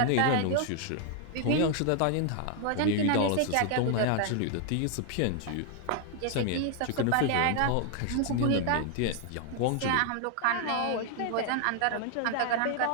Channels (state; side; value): different; both; correlation 0.00